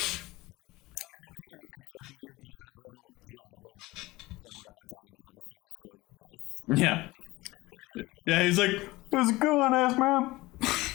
Can we hear Diablo in the somewhere outside also just going nice? Yeah. Thank you. Okay. And Good. he's like, "What's going on, ass man?"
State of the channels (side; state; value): right; quieter; 20.0 dB